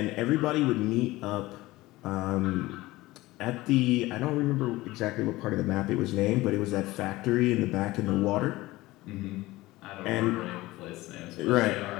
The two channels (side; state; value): right; quieter; 19.0 dB